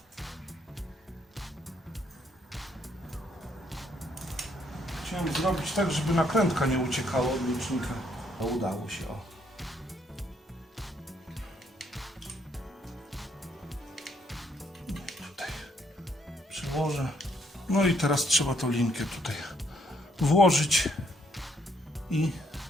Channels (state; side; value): normal; both; correlation 0.70